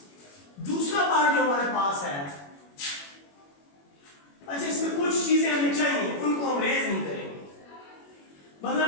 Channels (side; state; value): right; late; 21 ms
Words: दूसरा पार्ट जो हमारे पास है, अच्छा इसमें कुछ चीजें हमें चाहिए, उनको हम रेज नहीं करेंगे, मतलब